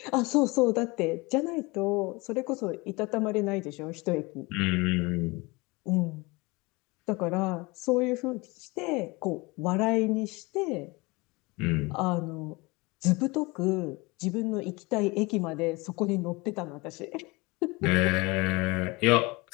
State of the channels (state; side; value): quieter; right; 24.8 dB